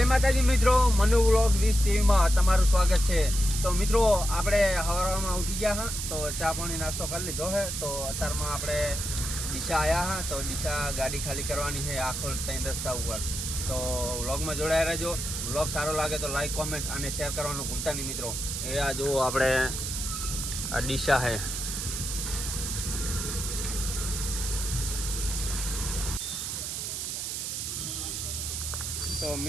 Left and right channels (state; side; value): noise; right; hiss, 4 dB below the sound